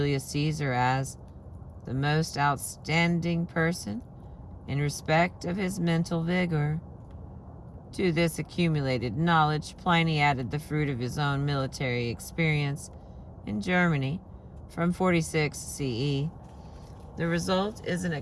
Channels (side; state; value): both; identical; correlation 1.00